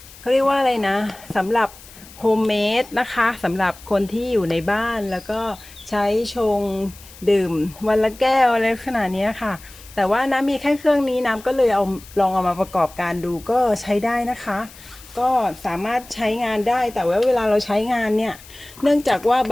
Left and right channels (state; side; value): noise; left; hiss, 20 dB below the sound